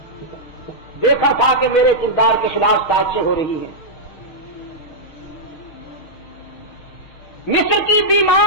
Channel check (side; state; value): right; late; 6.5 ms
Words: دیکھا تھا کہ میرے کردار کے خلاف سازشیں ہو رہی ہیں۔ مصر کی